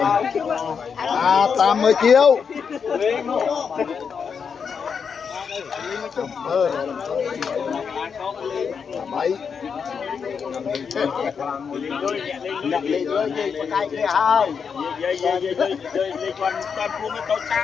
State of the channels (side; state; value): right; quieter; 6.3 dB